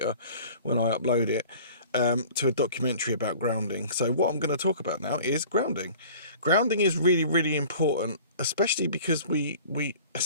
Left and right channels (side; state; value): both; inverted; correlation -0.46